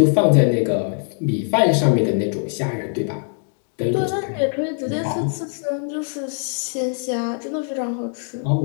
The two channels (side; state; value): right; silent; 55 dB below the other